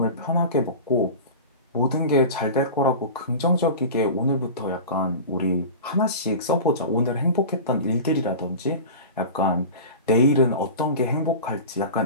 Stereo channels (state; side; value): inverted; both; correlation -0.32